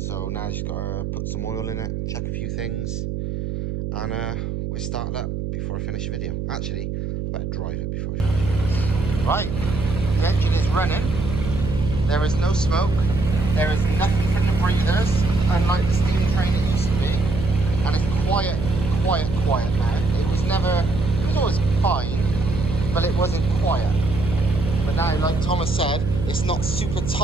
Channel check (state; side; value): noise; right; hum, 4 dB below the sound